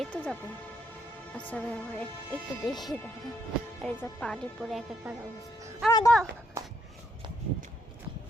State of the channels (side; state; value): both; normal; correlation 0.74